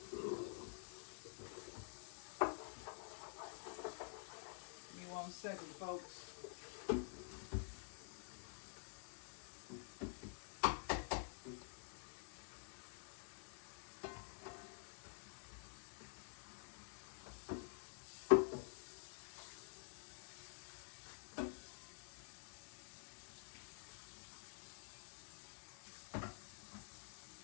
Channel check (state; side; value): silent; right; digital silence